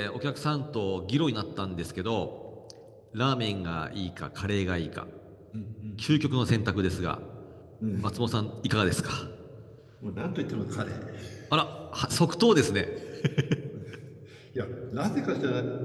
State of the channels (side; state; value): both; identical; correlation 1.00